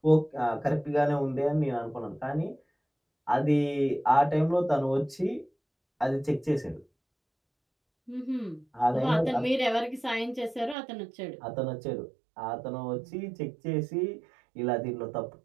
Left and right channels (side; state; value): left; drops out; at 10.8 s